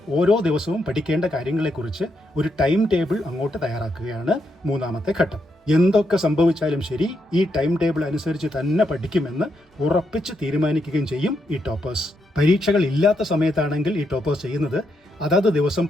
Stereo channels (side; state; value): both; normal; correlation 0.80